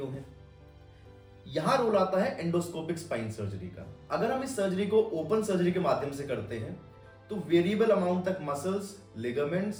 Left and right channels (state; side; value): identical; both; correlation 1.00